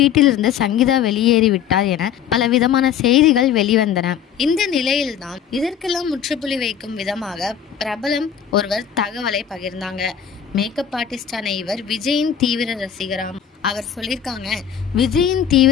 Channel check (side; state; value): right; quieter; 8.7 dB